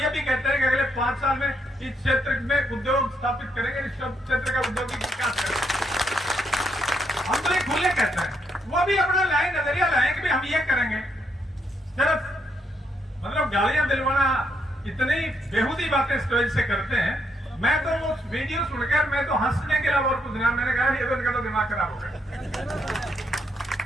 भी कहते हैं कि अगले 5 साल में इस क्षेत्र में उद्योग स्थापित करेंगे, इस क्षेत्र का औद्योगिक विकास करेंगे। हम तो ये खुले कहते हैं, वो भी अपना लाइन नजरिया लाए कि भाई हम ये करेंगे। सिर्फ मतलब गालियां दिलवाना, इतनी बेहूदी बातें स्टेज से करते हैं। मैं तो वो वीडियो सुनकर मैं तो हंसने के अलावा और कुछ नहीं, मैंने कहा ये तो दिमाग खराब हो गया।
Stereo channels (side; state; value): both; normal; correlation 0.76